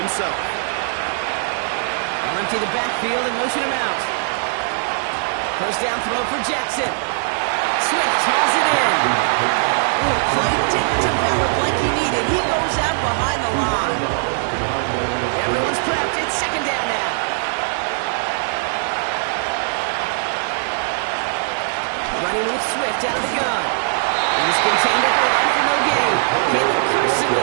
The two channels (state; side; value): silent; left; 66 dB below the other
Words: They'll empty the backfield and motion him out. First down throw for Jackson. Swift hauls it in. Ooh, play didn't develop like he needed. He goes out behind the line. Everyone's prepped. It's 2nd down now. Running with Swift out of the gun. He's contained at the line for no gain. Caleb Carson